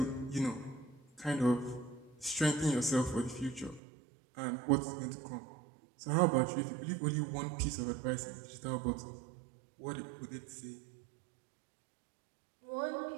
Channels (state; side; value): drops out; left; at 3.8 s